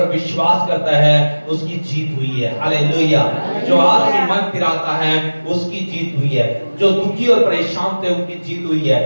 विश्वास करता है उसकी जीत हुई है। हालेलुया। जो आदमी मन फिराता है उसकी जीत हुई है, जो दुखी और परेशान थे उनकी जीत हुई है,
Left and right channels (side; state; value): both; inverted; correlation -1.00